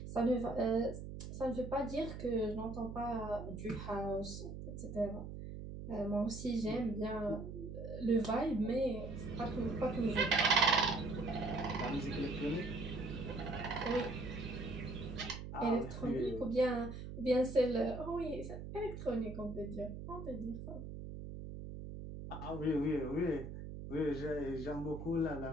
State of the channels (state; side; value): noise; right; hum, 8 dB below the sound